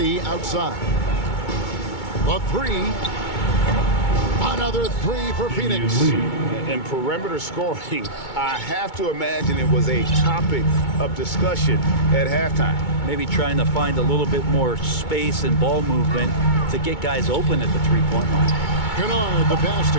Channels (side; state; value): right; late; 2.2 ms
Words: outside. The 3. Another 3 for Phoenix. And perimeter scoring, I have to imagine it was a topic of discussion at halftime. Maybe trying to find a little bit more space and ball movement to get guys open at the 3-point line. Kennard, the pass to